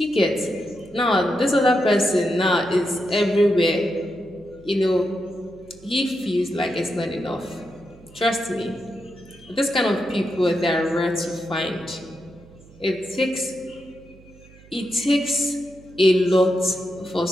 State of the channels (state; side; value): noise; right; hum, 24 dB below the sound